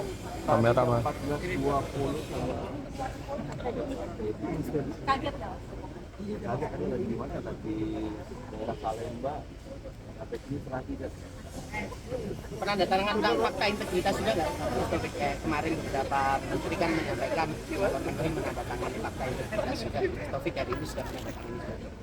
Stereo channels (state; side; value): identical; both; correlation 1.00